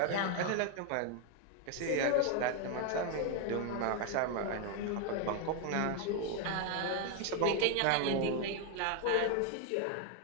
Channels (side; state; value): both; different; correlation 0.01